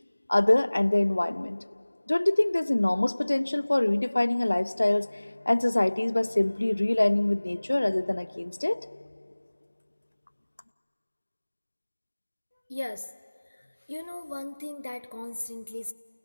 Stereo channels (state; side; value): inverted; both; correlation -1.00